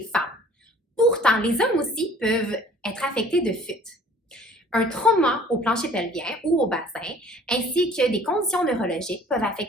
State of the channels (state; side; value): normal; both; correlation 0.52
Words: femmes. Pourtant, les hommes aussi peuvent être affectés de fuite. Un trauma au plancher pelvien ou au bassin, ainsi que des conditions neurologiques peuvent